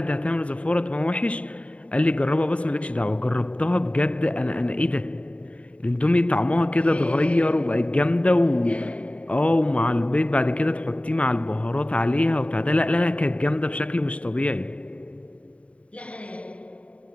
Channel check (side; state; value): right; late; 0.064 ms